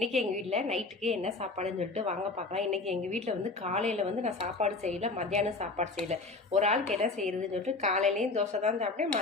எங்கள் வீட்டில் நைட்டுக்கு என்ன சாப்பாடுன்னு சொல்லிட்டு வாங்க பார்க்கலாம். இன்றைக்கி எங்கள் வீட்டில் வந்து காலையில் வந்து நான் சாப்பாடு செய்யலை, மத்தியானம் சாப்பாடு செய்யலை. ஒரு ஆளுக்கு என்ன செய்கிறதுன்னு சொல்லிட்டு காலையிலேயும் தோசை தான் சாப்பிட்டேன்,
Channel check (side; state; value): right; quieter; 3.5 dB